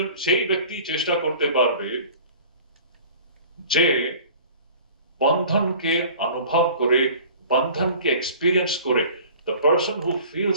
সেই ব্যক্তি চেষ্টা করতে পারবে যে বন্ধনকে অনুভব করে, বন্ধনকে এক্সপিরিয়েন্স করে। The person who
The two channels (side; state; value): both; inverted; correlation -0.45